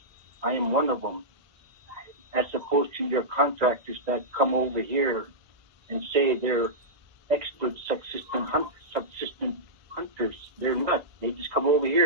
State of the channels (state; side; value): late; left; 1.5 ms